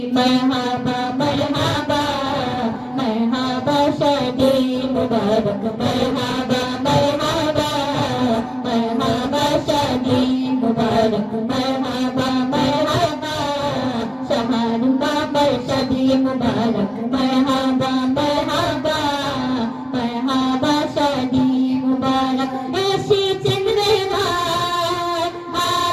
मरहबा मरहबा मरहबा शादी मुबारक मरहबा मरहबा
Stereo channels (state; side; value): identical; both; correlation 1.00